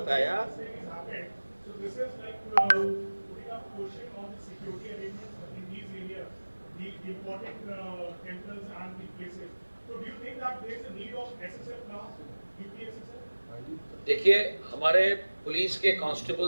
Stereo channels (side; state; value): both; inverted; correlation -1.00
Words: देखिए, हमारे पुलिस के